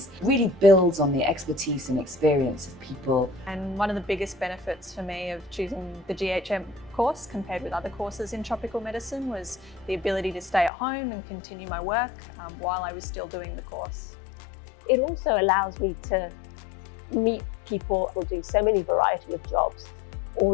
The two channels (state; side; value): drops out; right; at 10.7 s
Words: really builds on the expertise and experience of people. And one of the biggest benefits for me of choosing the GHM course compared with other courses in tropical medicine was the ability to stay at home and continue my work while I was still doing the course. It also allows me to meet people who do so many variety of jobs,